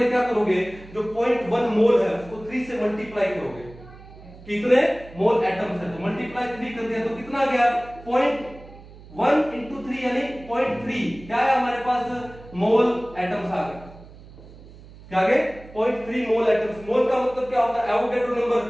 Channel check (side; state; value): right; noise; hum, 19 dB below the sound